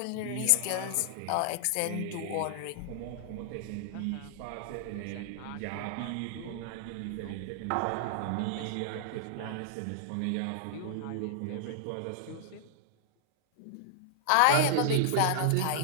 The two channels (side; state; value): both; different; correlation -0.01